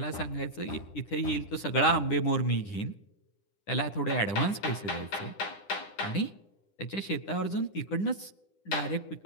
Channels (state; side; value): late; right; 10 ms